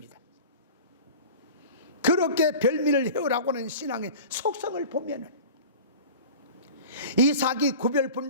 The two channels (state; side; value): inverted; both; correlation -0.38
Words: 그렇게 별미를 해오라고 하는 신앙의 속성을 보면은 이삭이 구별